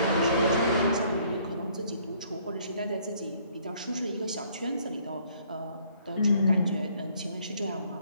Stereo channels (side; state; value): both; inverted; correlation -0.63